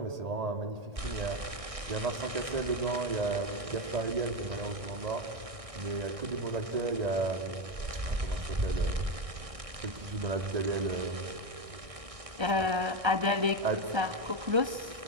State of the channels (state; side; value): late; left; 1.6 ms